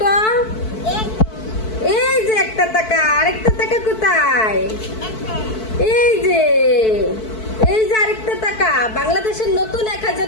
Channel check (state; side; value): late; right; 4.6 ms